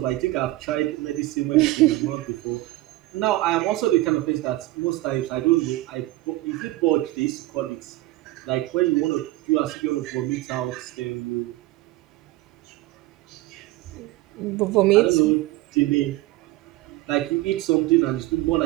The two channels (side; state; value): left; quieter; 17.9 dB